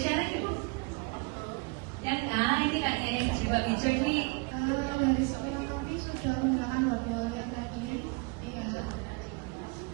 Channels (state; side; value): quieter; left; 29.8 dB